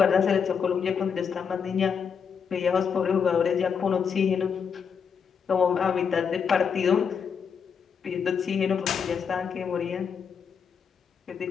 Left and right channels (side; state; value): right; quieter; 6.7 dB